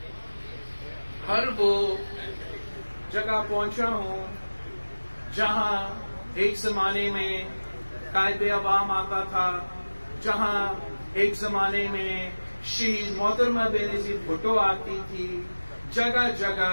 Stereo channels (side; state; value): both; inverted; correlation -1.00